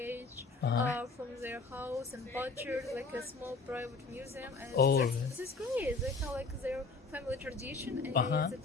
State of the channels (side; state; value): right; quieter; 3.9 dB